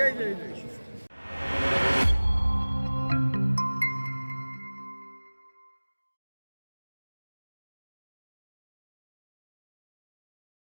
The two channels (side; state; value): both; inverted; correlation -1.00